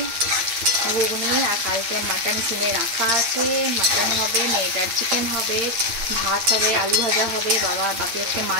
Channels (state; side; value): late; left; 8.7 ms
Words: ঘুগনি, আর কালকে মাটন কিনে রাখা আছে, মাটন হবে, মেয়েটার চিকেন হবে, ভাত হবে, আলু ভাজা হবে, বাপি আজকে